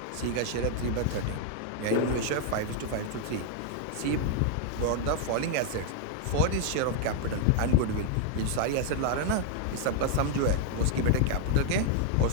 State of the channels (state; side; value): different; both; correlation 0.00